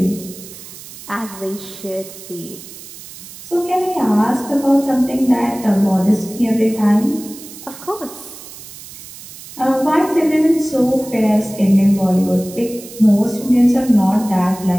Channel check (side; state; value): right; noise; hiss, 16 dB below the sound